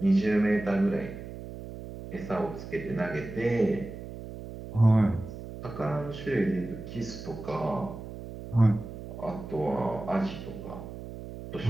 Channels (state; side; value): noise; right; hum, 11 dB below the sound